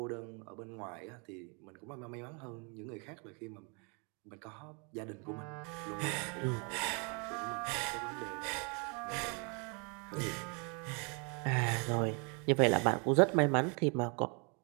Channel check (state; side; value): quieter; left; 34.2 dB